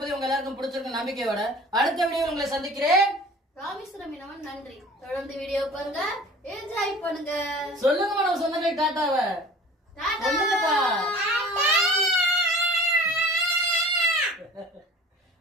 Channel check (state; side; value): normal; both; correlation 0.44